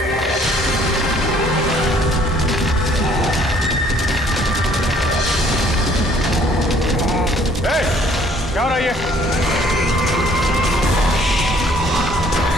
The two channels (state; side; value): normal; both; correlation 0.59